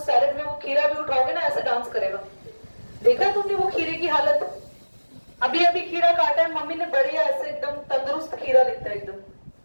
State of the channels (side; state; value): both; inverted; correlation -1.00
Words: सैलेड में वो खीरा भी उठाओगे ना ऐसे डांस करेगा। देखा तुमने वो खीरे की हालत, अभी अभी खीरा काटा है मम्मी ने, बढ़िया ऐसे एकदम तंदुरुस्त खीरा दिखता है एकदम,